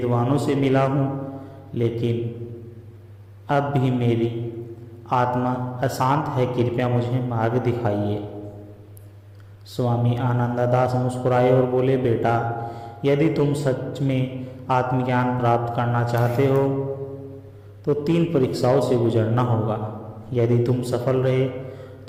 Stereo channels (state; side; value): identical; both; correlation 1.00